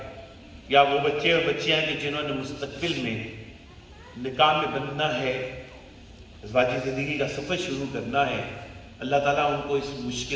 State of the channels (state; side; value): identical; both; correlation 1.00